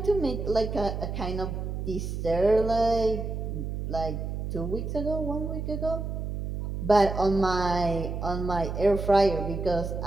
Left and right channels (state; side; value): noise; right; hum, 4 dB below the sound